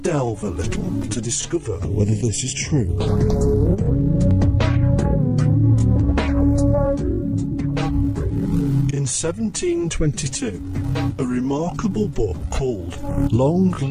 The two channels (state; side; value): identical; both; correlation 1.00